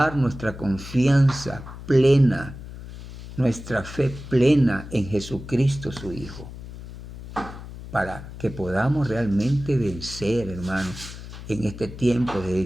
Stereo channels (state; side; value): noise; left; hum, 13 dB below the sound